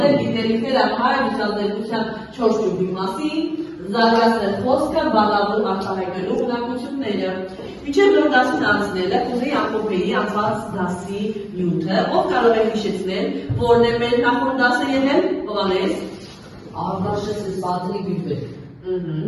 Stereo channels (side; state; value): both; identical; correlation 1.00